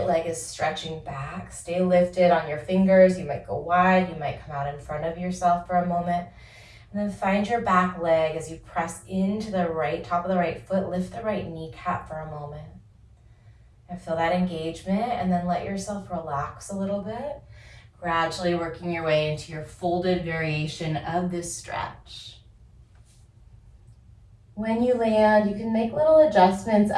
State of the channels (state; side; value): identical; both; correlation 1.00